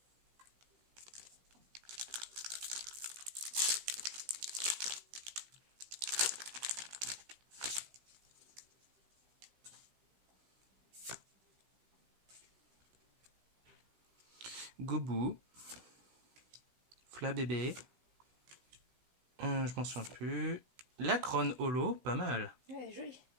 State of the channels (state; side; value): late; left; 16 ms